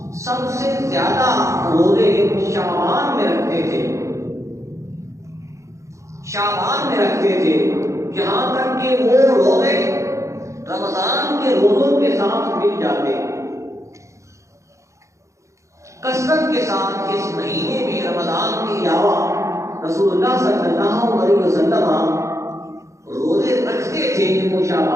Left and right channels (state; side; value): late; left; 0.15 ms